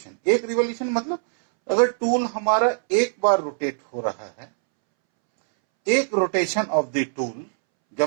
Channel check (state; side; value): silent; left; 64 dB below the other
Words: मतलब अगर टूल हमारा एक बार रोटेट हो रहा है, एक रोटेशन ऑफ द टूल,